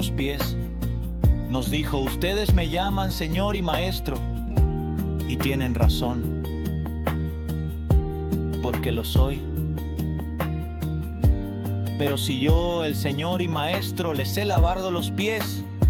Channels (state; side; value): identical; both; correlation 1.00